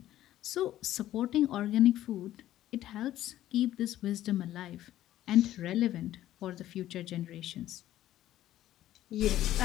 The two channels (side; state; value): right; quieter; 13.4 dB